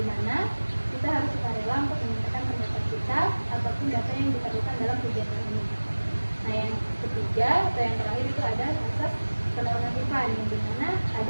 mana kita harus sukarela untuk menyampaikan pendapat kita ataupun data yang diperlukan dalam kegiatan ini. Nah, yang ketiga atau yang terakhir itu ada asas penormatifan, di mana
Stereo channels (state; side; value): inverted; both; correlation -1.00